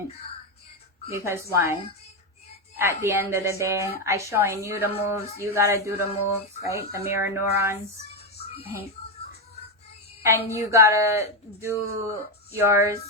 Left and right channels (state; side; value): normal; both; correlation 0.08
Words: Because why? At the end of the day, I showing you the moves, you gotta do the moves, right? The mirror neurons, right? And you gotta do yours